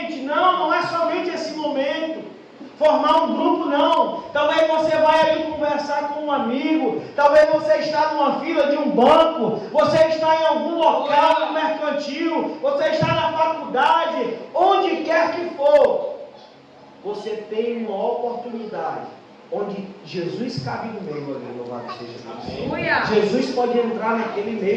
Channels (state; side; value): identical; both; correlation 1.00